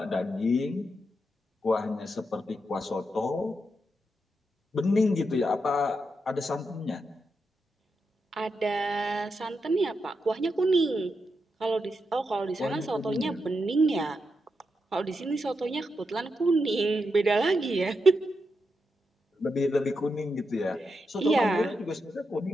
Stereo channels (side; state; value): both; normal; correlation 0.85